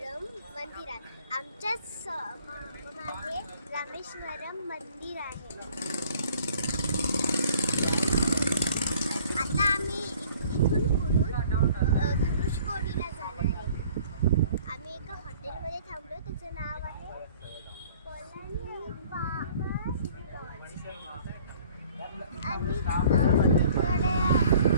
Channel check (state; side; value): inverted; both; correlation -0.54